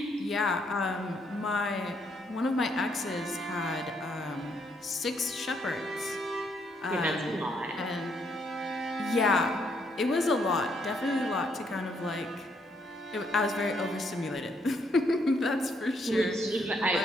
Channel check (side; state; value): both; normal; correlation 0.73